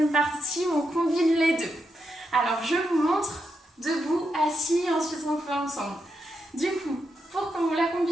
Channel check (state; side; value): normal; both; correlation 0.84